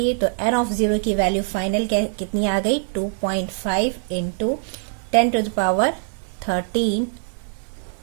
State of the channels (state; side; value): silent; left; 64 dB below the other